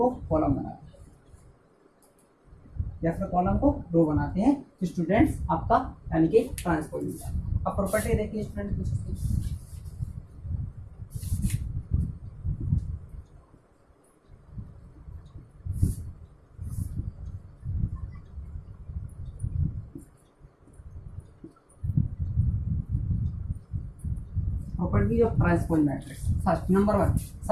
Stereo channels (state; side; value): identical; both; correlation 1.00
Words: कॉलम बनाते हैं या फिर कॉलम को रो बनाते हैं तो स्टूडेंट्स आपका यानी कि ट्रांसपोज मिलता है। अब प्रॉपर्टी देखिए स्टूडेंट कुछ property of transpose matrix. First number 1,